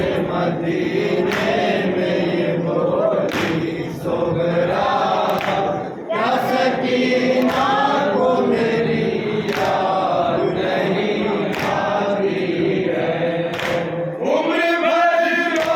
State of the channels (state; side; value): identical; both; correlation 1.00